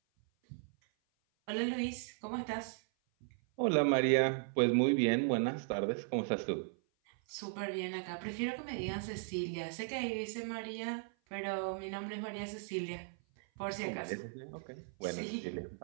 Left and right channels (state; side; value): silent; left; 53 dB below the other